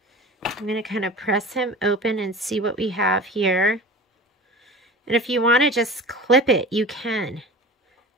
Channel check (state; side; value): normal; both; correlation 0.36